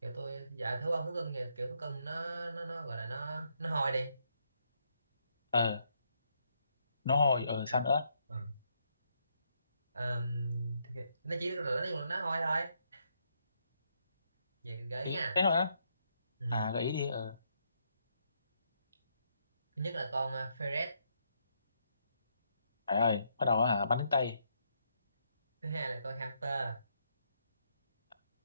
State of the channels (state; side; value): inverted; both; correlation -0.76